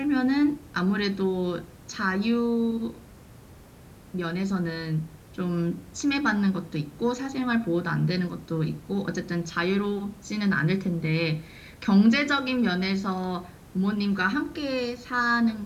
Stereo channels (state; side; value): identical; both; correlation 1.00